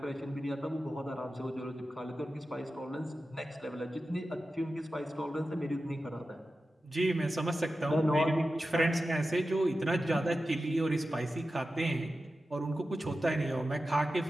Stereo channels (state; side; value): normal; both; correlation 0.93